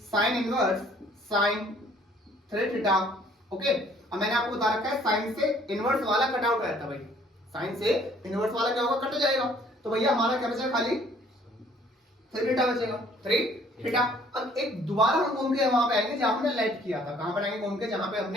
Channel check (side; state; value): both; normal; correlation 0.59